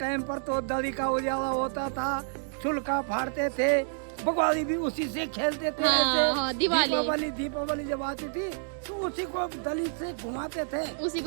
पर तो दली का उजाला होता था, चुलका फाड़ते थे, बगवाली भी उसी से खेलते थे। दीपावली जब आती थी तो उसी को दली से घुमाते थे, उसी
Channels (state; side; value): silent; left; digital silence